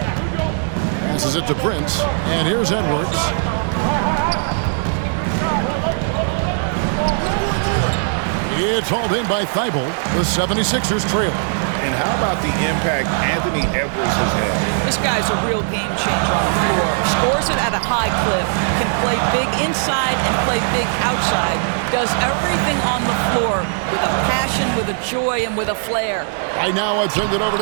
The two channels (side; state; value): left; silent; 66 dB below the other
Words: Passes it to Prince, and here's Edwards. It's hauled in by Thybulle. The 76ers trail. And how about the impact Anthony Edwards has had? This guy's a real game changer on the floor. Scores it at a high clip, can play play big inside and play big outside. Does everything on the floor with a passion, with a joy, and with a flair. Right now, I'd send it over